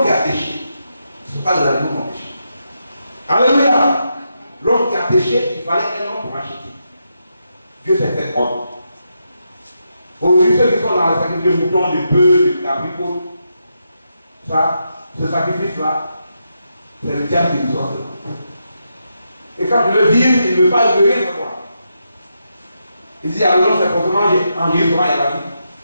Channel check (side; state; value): both; inverted; correlation -0.84